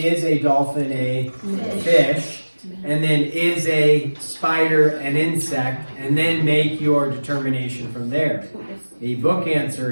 a dolphin a fish? And then is a spider an insect? And then make your determination from there. The book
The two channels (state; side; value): inverted; both; correlation -1.00